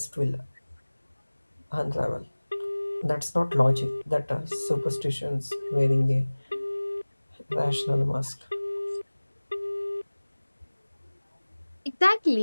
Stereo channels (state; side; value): inverted; both; correlation -1.00